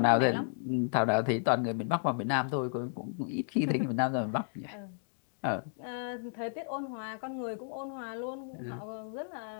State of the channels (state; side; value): silent; right; digital silence